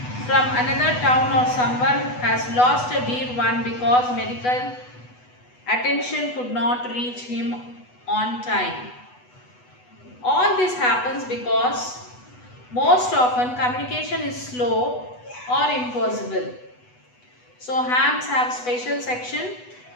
from another town, or someone has lost a dear one because medical attention could not reach him on time. All this happens because most often communication is slow or impossible. So hams have special section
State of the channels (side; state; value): right; late; 8.1 ms